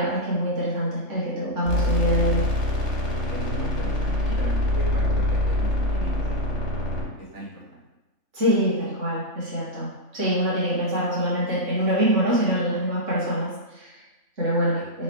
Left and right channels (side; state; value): left; late; 3.4 ms